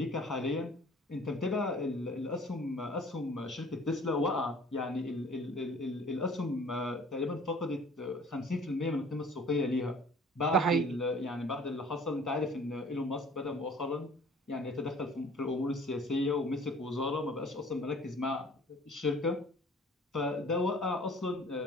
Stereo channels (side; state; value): both; normal; correlation 0.50